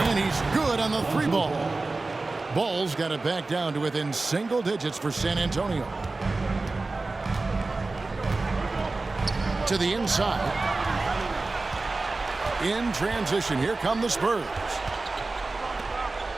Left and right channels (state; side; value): quieter; left; 3.4 dB